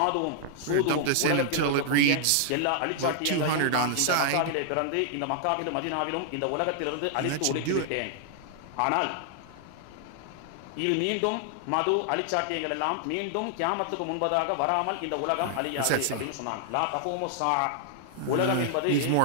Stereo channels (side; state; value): both; different; correlation -0.01